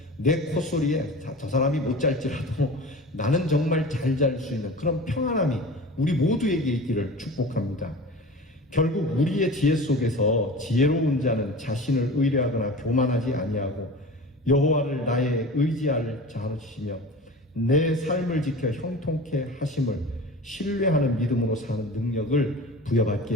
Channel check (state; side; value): normal; both; correlation 0.35